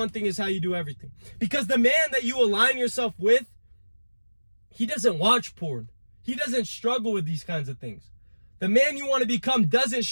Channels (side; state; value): both; inverted; correlation -1.00